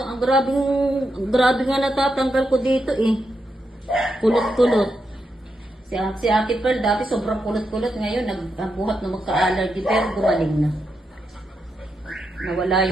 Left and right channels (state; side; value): normal; both; correlation 0.84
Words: ang grabe nga natatanggal ko dito eh. Kulot-kulot. Si Ate Pearl dati sobrang kulot-kulot. Ngayon nagbuhat na magka-allergy pero gumaling na. Nawala